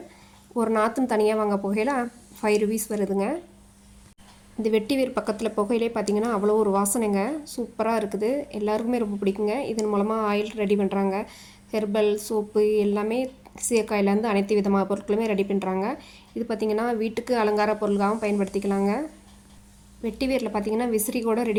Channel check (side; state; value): both; identical; correlation 1.00